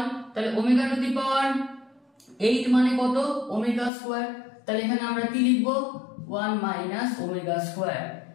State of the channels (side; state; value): right; drops out; at 3.9 s